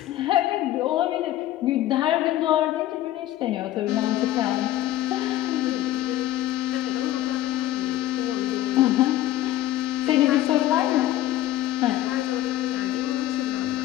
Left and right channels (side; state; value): right; quieter; 13.9 dB